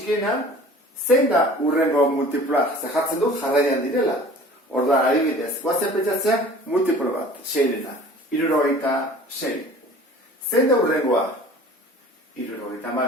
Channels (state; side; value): normal; both; correlation 0.46